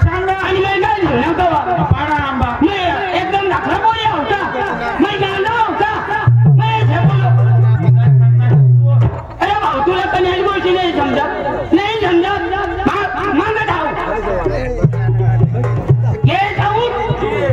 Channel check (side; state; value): both; identical; correlation 1.00